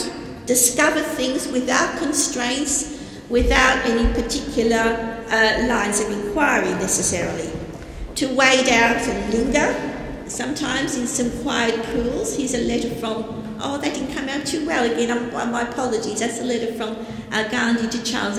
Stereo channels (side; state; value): both; identical; correlation 1.00